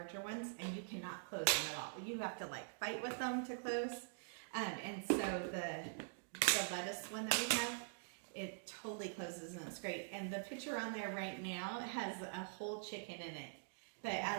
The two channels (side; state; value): left; silent; digital silence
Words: ones, and you cannot close them at all. You have to like fight with them to close. And so the lettuce one that we have, it totally closes and it's great. And the picture on there right now has a whole chicken in it. But